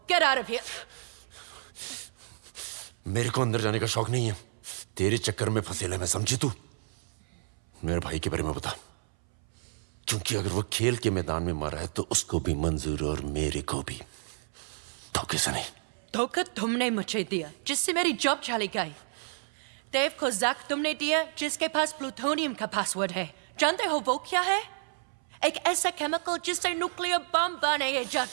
get out of here. मेरे को अंदर जाने का शौक नहीं है। तेरे चक्कर में फंसेला मैं, समझी तू? मेरे भाई के बारे में बता, क्योंकि अगर वो खेल के मैदान में मारा है तो उसको भी मंजूर और मेरे को भी। धोखे से नहीं। धोखा तुमने मुझे दिया, जिससे मेरी जॉब चली गई। देव को जैक तुमने दिया, जिसके पास प्लूटोनियम का पासवर्ड है। जानते हो वो क्या है? एक ऐसा केमिकल जिससे न्यूक्लियर बम बनाए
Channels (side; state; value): left; silent; 58 dB below the other